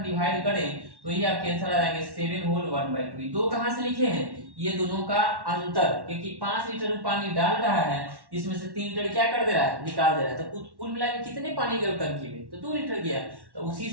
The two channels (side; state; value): left; late; 1.1 ms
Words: डिवाइड करें तो ये आपके आंसर आ जाएंगे 7 होल 1/2। दो कहां से लिखे हैं, ये दोनों का अंतर, क्योंकि 5 लीटर पानी डाल रहा है, इसमें से 3 लीटर क्या कर दे रहा है, निकाल दे रहा है, तो कुल मिला के कितने पानी गए टंकी में, तो 2 लीटर गया। तो उसी